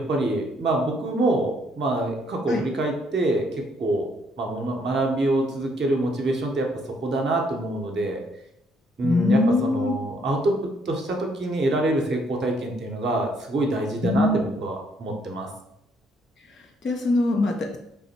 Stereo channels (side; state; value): both; normal; correlation 0.69